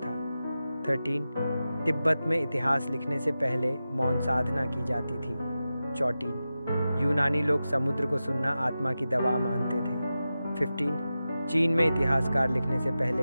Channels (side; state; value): both; inverted; correlation -0.93